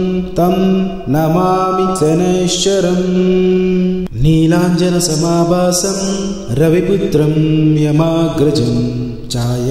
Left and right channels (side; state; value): both; identical; correlation 1.00